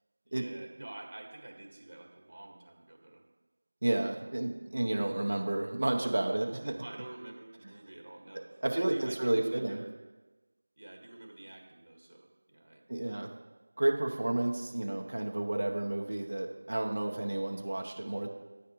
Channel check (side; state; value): both; inverted; correlation -1.00